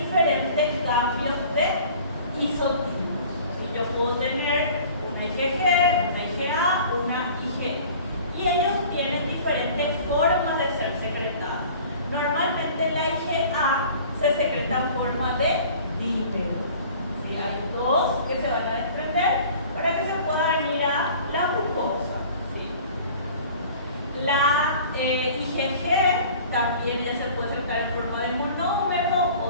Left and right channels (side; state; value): both; inverted; correlation -0.47